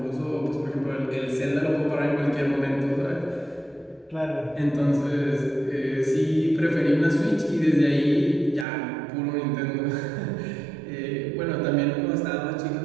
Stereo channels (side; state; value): left; drops out; at 8.7 s